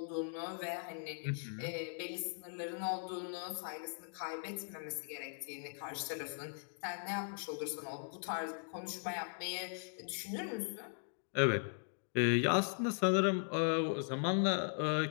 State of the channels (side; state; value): right; silent; digital silence